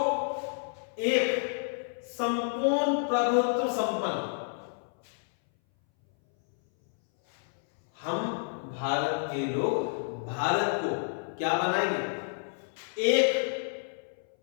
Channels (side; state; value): right; silent; 58 dB below the other